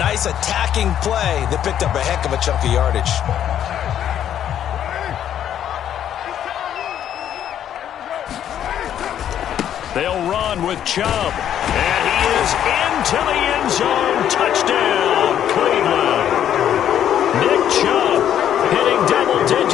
attacking play that picked up a heck of a chunk of yardage. They'll run with Chubb. And he is into the end zone. Touchdown, Cleveland. Nick Chubb hitting double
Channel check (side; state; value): right; quieter; 10.2 dB